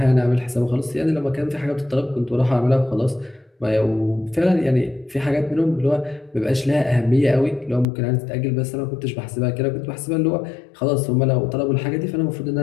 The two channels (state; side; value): drops out; right; at 7.9 s